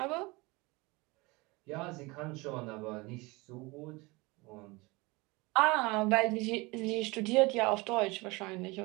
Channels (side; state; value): left; quieter; 24.3 dB